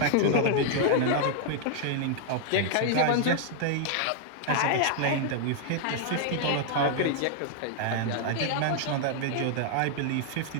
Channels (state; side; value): different; both; correlation 0.00